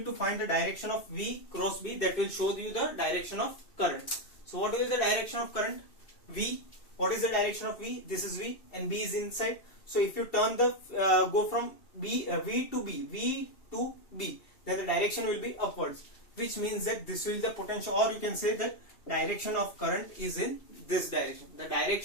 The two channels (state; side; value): late; right; 2.7 ms